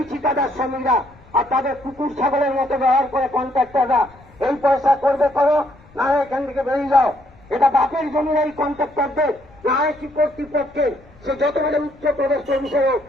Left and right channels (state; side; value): noise; left; rumble, 26 dB below the sound